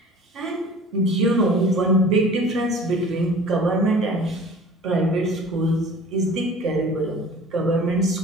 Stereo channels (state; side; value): normal; both; correlation 0.44